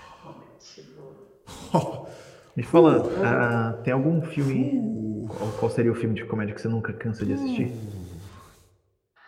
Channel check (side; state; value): both; identical; correlation 1.00